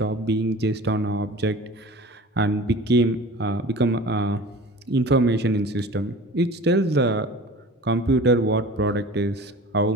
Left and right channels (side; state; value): both; normal; correlation 0.40